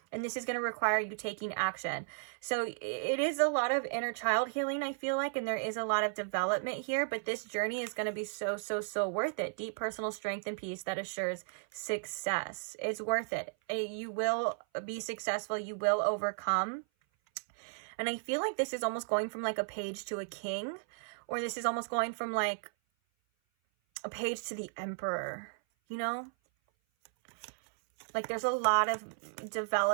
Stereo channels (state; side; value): silent; left; 55 dB below the other